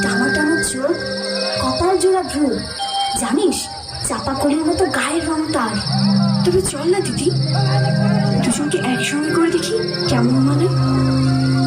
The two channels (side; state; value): both; identical; correlation 1.00